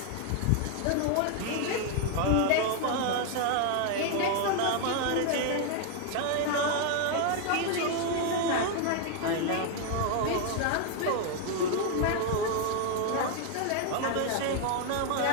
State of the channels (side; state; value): both; different; correlation 0.00